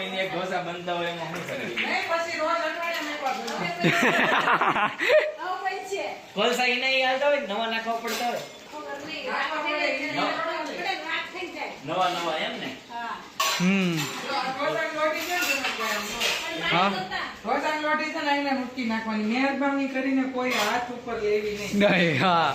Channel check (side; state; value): both; identical; correlation 1.00